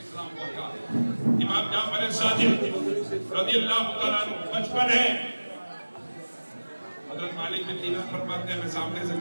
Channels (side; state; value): both; inverted; correlation -1.00